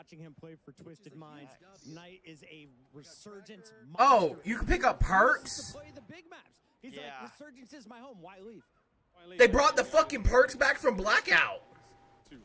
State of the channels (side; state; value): both; identical; correlation 1.00